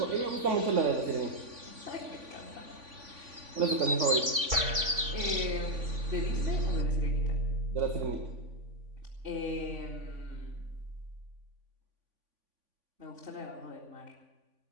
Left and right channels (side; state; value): left; late; 3.5 ms